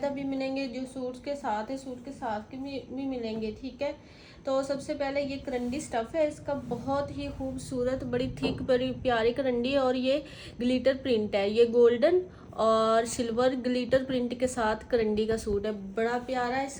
भी मिलेंगे, जो सूट्स के साथ है, सूट के साथ के भी मिलेंगे। ठीक है, तो सबसे पहले ये करंडी स्टफ़ है, इसका बहुत ही खूबसूरत, बड़ी थिक, बड़ी प्यारी करंडी है और ये ग्लिटर प्रिंट है। ये गोल्डन और सिल्वर ग्लिटर प्रिंट के साथ करंडी का सूट है। बड़ा प्यारा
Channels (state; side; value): identical; both; correlation 1.00